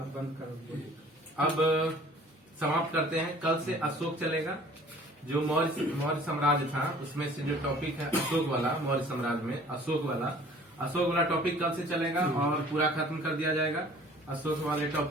बंद करो। अब समाप्त करते हैं। कल से अशोक चलेगा। जो मौर्य साम्राज्य था उसमें से जो टॉपिक है अशोक वाला, मौर्य साम्राज्य में अशोक वाला टॉपिक कल से चलेगा और पूरा खत्म कर दिया जाएगा अशोक वाले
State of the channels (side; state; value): both; normal; correlation 0.51